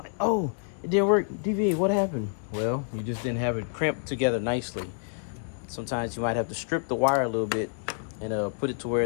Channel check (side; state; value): right; silent; digital silence